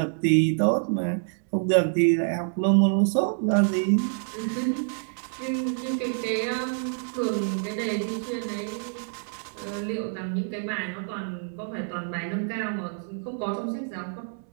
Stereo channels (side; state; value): left; silent; digital silence